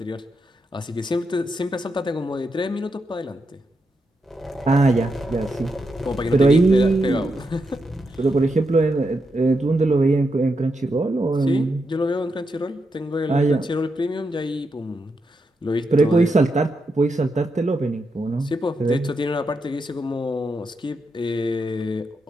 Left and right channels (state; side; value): normal; both; correlation 0.84